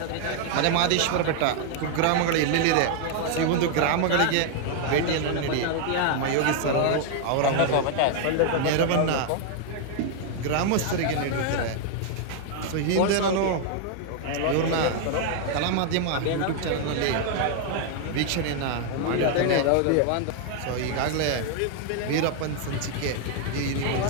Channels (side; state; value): both; different; correlation 0.00